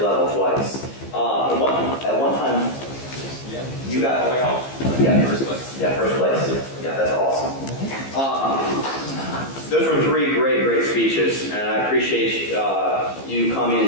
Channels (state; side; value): late; right; 15 ms